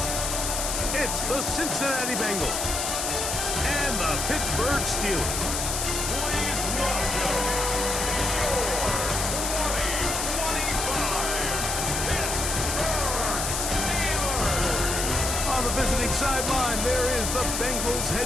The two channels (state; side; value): noise; left; hiss, 1 dB below the sound